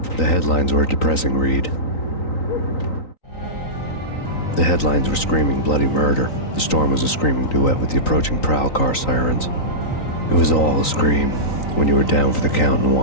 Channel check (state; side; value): late; right; 3.9 ms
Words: The headlines were a depressing read. The headlines were screaming bloody murder. The storm was a screaming duet with the approaching prowl car sirens. It was all a scream when you were down for the count and